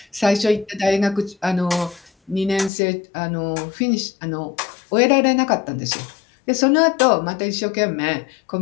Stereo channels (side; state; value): right; drops out; at 2.7 s